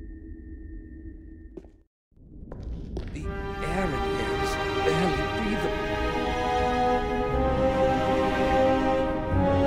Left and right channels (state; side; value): identical; both; correlation 1.00